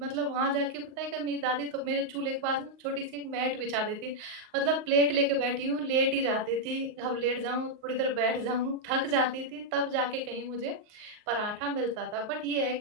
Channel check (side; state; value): left; late; 38 ms